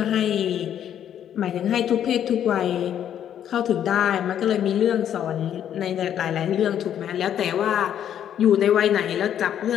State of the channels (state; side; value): quieter; right; 9.9 dB